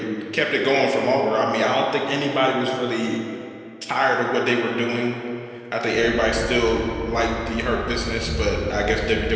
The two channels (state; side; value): identical; both; correlation 1.00